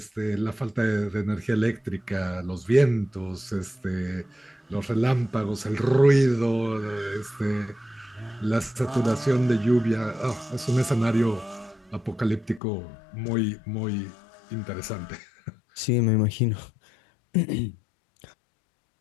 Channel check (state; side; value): drops out; right; at 12.6 s